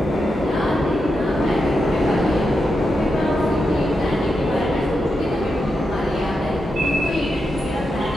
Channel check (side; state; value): both; normal; correlation 0.86